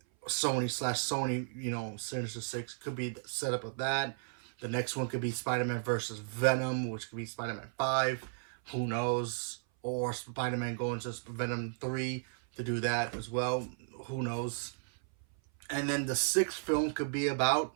Sony Sinister Six. Could be the setup of that. The next one could be Spider-Man versus Venom, which could be Spider-Man 5. Who knows? Or Spider-Man going to Venom 3 to do that as well. Who knows? And then the 6th film could be about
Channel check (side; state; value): left; silent; 55 dB below the other